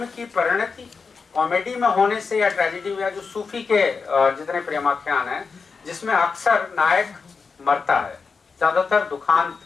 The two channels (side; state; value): right; quieter; 5.0 dB